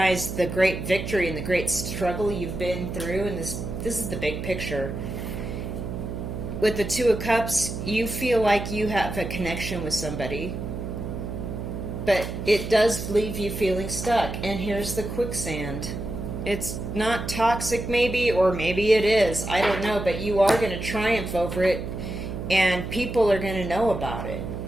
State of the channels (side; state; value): right; noise; hum, 6 dB below the sound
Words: the great victory and the great struggle you've been through. And this is the big picture. With the Two of Cups, you feel like you have a connection with somebody, but it does leave you feeling stuck. And here's the quicksand. It's not toxic, maybe, or maybe it is. I don't know, but you are going to triumph over it, and people are going to know about it.